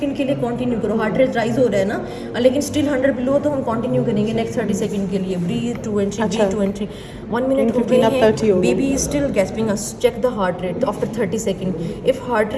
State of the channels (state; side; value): identical; both; correlation 1.00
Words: के लिए, कंटिन्यू करो. हार्ट रेट राइज हो रहा है ना, लेकिन स्टिल 100 बिलो, तो हम कंटिन्यू करेंगे नेक्स्ट 30 सेकंड के लिए. Breath 2 and 3, breathe 2 and 3. 1 minute हो गए हैं. Baby is still gasping. Check the heart rate after 30 second. If heart